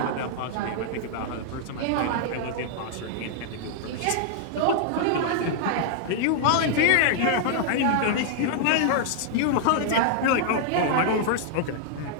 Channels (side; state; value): both; different; correlation -0.01